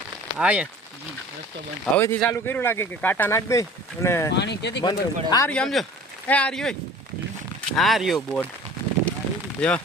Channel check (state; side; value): normal; both; correlation 0.45